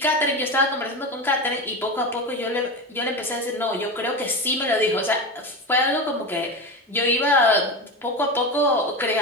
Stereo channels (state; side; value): normal; both; correlation 0.22